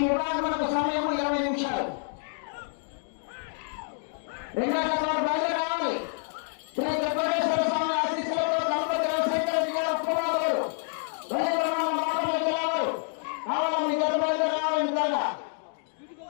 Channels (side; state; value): right; silent; 59 dB below the other